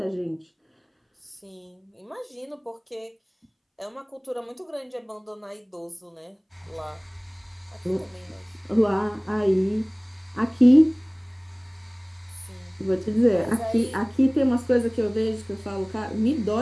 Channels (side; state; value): both; identical; correlation 1.00